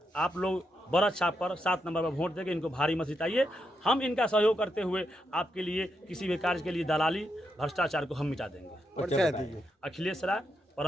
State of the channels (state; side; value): normal; both; correlation 0.82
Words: आप लोग बड़ा छाप पर 7 नंबर पर वोट देके इनको भारी मत जिताइए। हम इनका सहयोग करते हुए आपके लिए किसी भी कार्य के लिए दलाली भ्रष्टाचार को हम मिटा देंगे। अखिलेश राय,